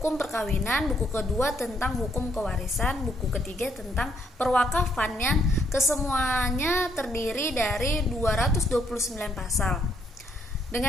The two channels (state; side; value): normal; both; correlation 0.71